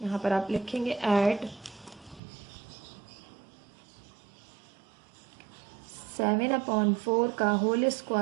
पर आप लिखेंगे ऐड 7/4 का whole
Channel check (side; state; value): left; drops out; at 2.2 s